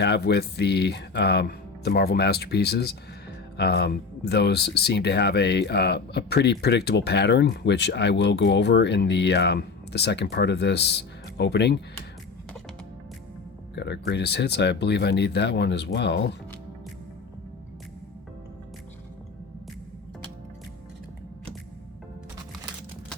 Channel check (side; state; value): right; quieter; 4.5 dB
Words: with the Marvel Masterpieces. Those seem to have a pretty predictable pattern, which I will go over in the second part of this opening. Got our greatest hits. I believe I need that one as well.